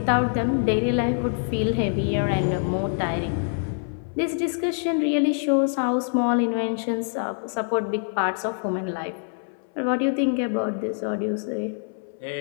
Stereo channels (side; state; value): right; silent; 62 dB below the other